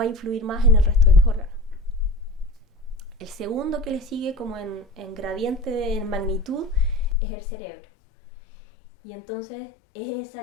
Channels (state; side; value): drops out; right; at 7.2 s